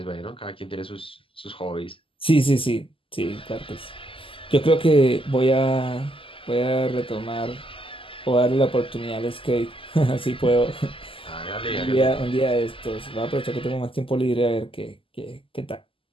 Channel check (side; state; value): right; late; 0.25 ms